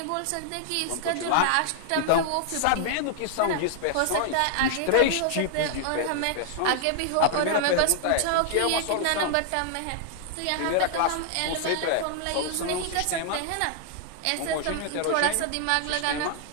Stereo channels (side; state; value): both; different; correlation 0.00